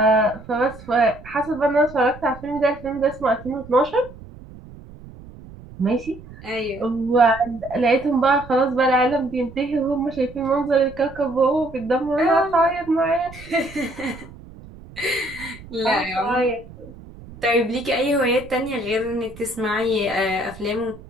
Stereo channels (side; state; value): right; noise; rumble, 18 dB below the sound